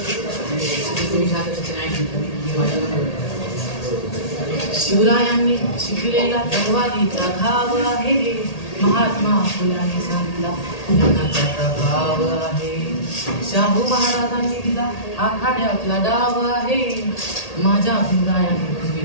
शिवरायांनी शिकलेला तलवारीचा घाव आहे, महात्मा फुलांनी सांगितला ज्ञानाचा प्रभाव आहे, शाहू महाराजांनी दिला आखाड्यातला डाव आहे, माझ्या भीमरायांनी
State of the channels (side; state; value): right; late; 1.8 ms